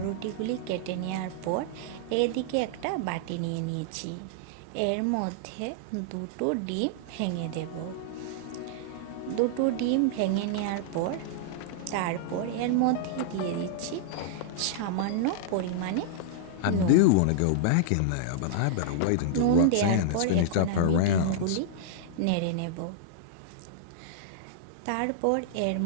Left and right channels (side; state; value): both; different; correlation -0.01